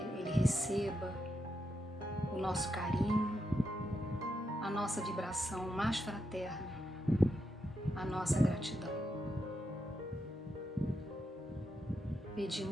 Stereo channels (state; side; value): normal; both; correlation 0.84